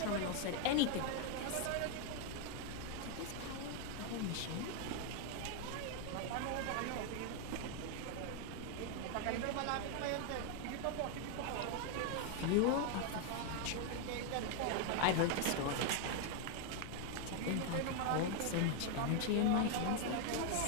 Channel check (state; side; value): different; both; correlation 0.01